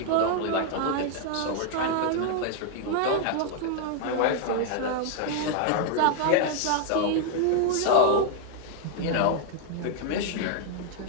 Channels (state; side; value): different; both; correlation 0.00